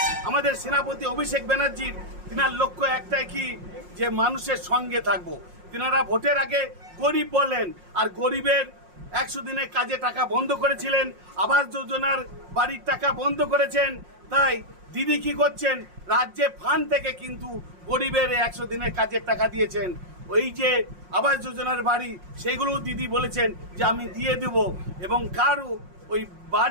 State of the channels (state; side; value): late; left; 5.6 ms